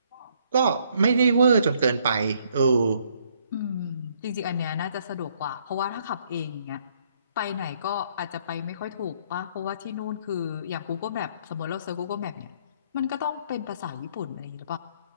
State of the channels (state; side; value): inverted; both; correlation -0.67